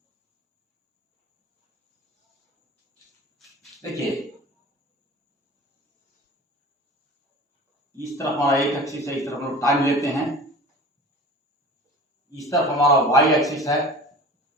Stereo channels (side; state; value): both; normal; correlation 0.39